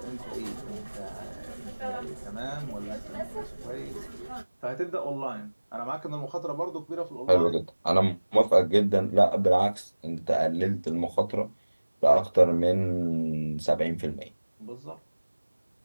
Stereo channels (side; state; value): both; inverted; correlation -1.00